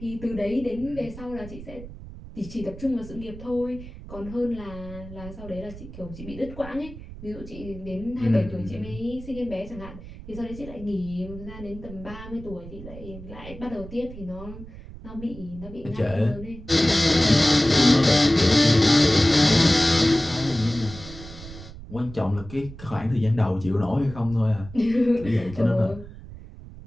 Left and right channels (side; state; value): right; noise; rumble, 14 dB below the sound